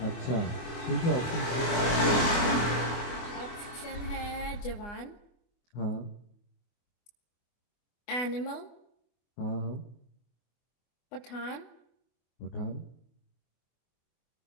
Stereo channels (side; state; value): right; late; 24 ms